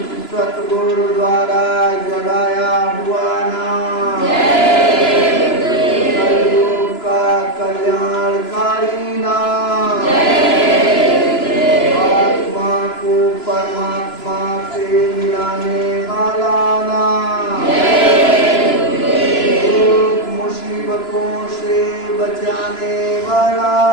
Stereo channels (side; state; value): right; late; 2.9 ms